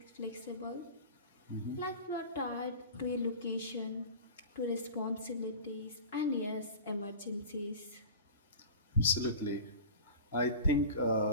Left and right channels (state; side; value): inverted; both; correlation -0.36